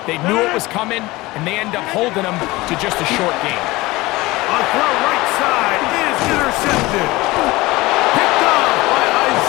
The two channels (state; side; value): quieter; right; 20.4 dB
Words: they knew it was coming, and they end up holding them to just a short gain. A throw right side is intercepted. Picked off by